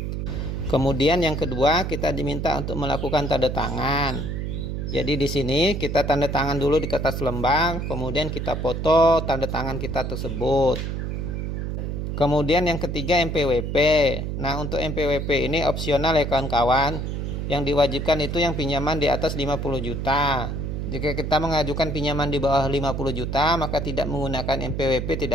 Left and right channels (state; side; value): noise; right; hum, 3 dB below the sound